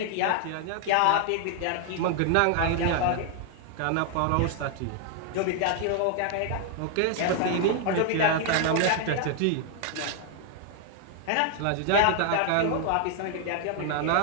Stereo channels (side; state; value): both; different; correlation 0.00